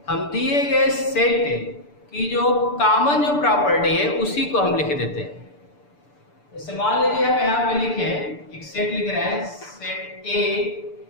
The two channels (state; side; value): late; right; 6.8 ms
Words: हम दिए गए सेट की जो कॉमन जो प्रॉपर्टी है उसी को हम लिख देते हैं। जैसे मान लीजिए हम यहाँ पे लिखे एक सेट लिख रहे हैं, set A